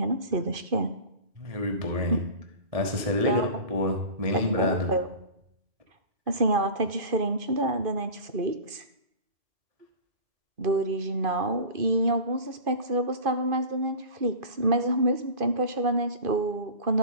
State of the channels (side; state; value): left; late; 2.5 ms